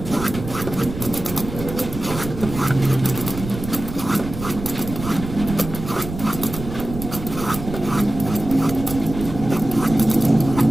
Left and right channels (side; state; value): right; noise; rumble, 9 dB below the sound